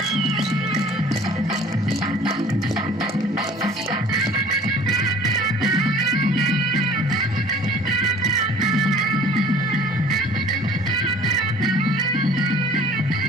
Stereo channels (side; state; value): both; normal; correlation 0.50